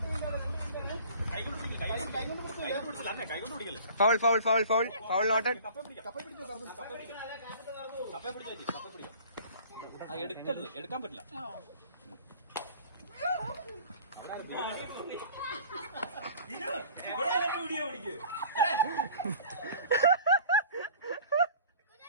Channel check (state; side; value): inverted; both; correlation -0.46